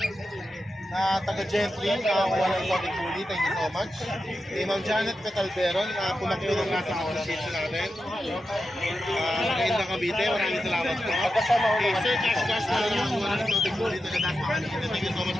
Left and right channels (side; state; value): both; normal; correlation 0.90